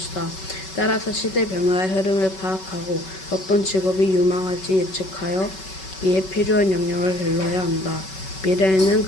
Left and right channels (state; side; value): late; right; 5.3 ms